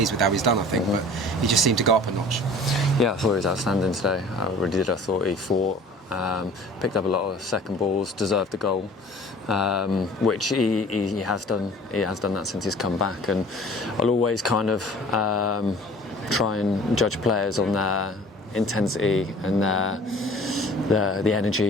with how he's done, I think, but he just seemed to go up a notch. Yeah, I thought he was outstanding today. I really did. I thought he fought, picked up a lot of second balls, deserved the goal, which he has done. He has done that since he's come back, and I'll always kind of try and judge players on their intensity and the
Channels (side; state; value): both; normal; correlation 0.47